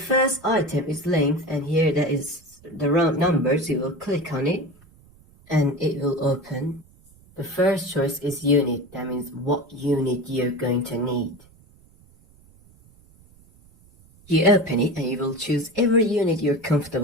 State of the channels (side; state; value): right; noise; rumble, 28 dB below the sound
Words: item is length, and here that is the round numbers. You will click on it and it will open. The first choice is unit. That means what unit you're going to need. You open it and you will choose every unit you're